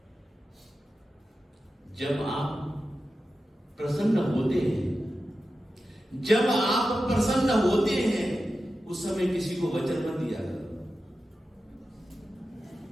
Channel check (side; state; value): both; normal; correlation 0.92